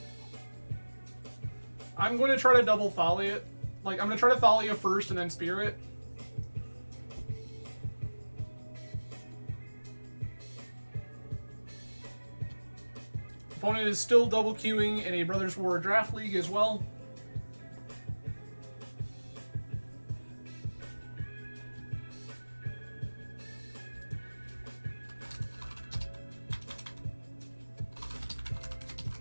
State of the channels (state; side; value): inverted; both; correlation -1.00